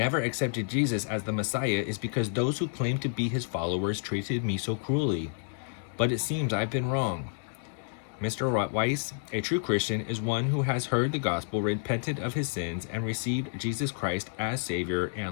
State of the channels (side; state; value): right; silent; digital silence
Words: accepted Jesus as the Messiah is because those who claim to be his followers treated me so cruelly. But it seems I've been wrong. Mr. Weiss, a true Christian is one who has heard the gospel, repented of his sins, and received Jesus Christ as Savior